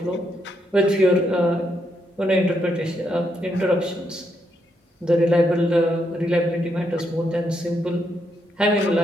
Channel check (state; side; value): normal; both; correlation 0.78